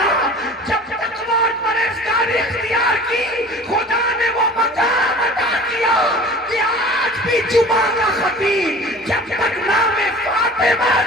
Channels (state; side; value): normal; both; correlation 0.41